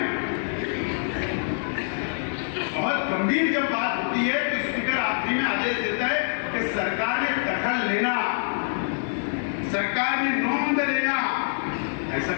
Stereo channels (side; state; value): right; silent; 61 dB below the other